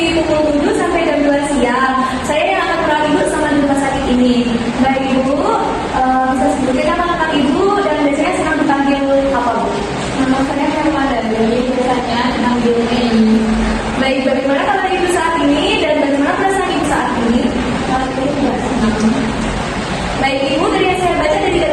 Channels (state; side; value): identical; both; correlation 1.00